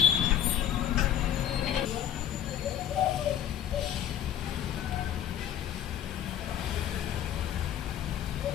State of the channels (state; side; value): quieter; right; 10.4 dB